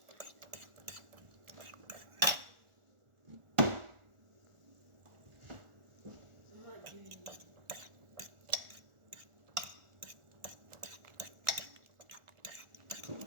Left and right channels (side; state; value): left; late; 1.4 ms